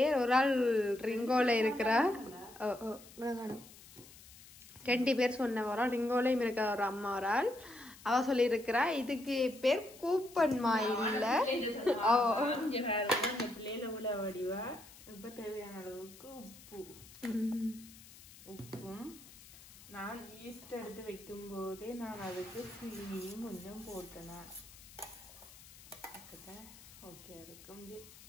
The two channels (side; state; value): left; noise; hiss, 20 dB below the sound